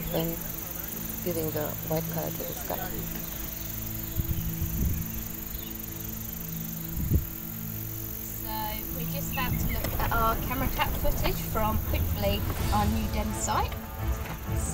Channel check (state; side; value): identical; both; correlation 1.00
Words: then giving the white color to the scat. We're just about to look at our camera trap footage from, hopefully, our new den site.